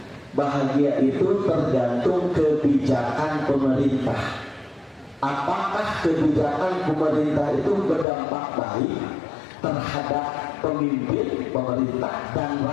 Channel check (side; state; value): right; drops out; at 8.1 s